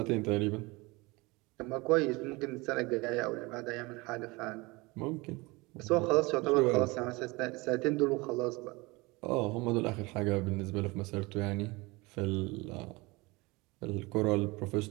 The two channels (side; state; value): left; quieter; 24.1 dB